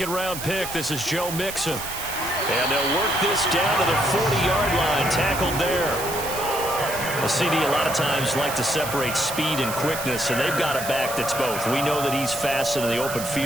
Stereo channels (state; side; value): noise; right; hiss, 8 dB below the sound